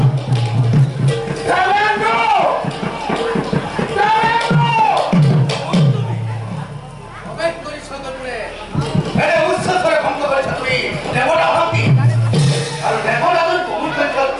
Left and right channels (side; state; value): both; identical; correlation 1.00